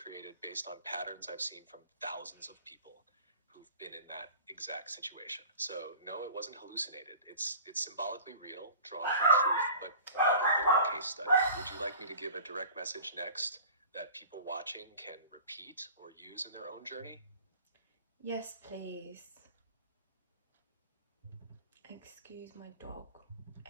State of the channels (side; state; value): both; inverted; correlation -0.41